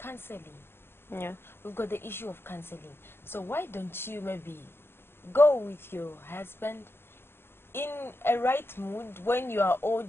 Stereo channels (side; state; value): right; late; 0.11 ms